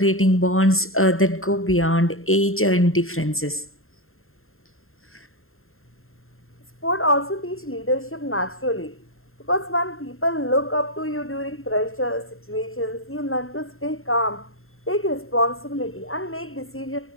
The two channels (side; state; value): right; late; 0.61 ms